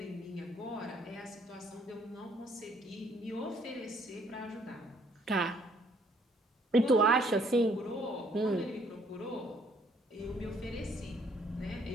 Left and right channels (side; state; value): both; normal; correlation 0.65